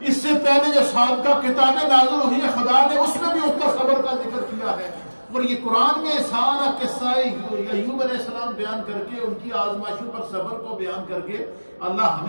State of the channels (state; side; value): inverted; both; correlation -1.00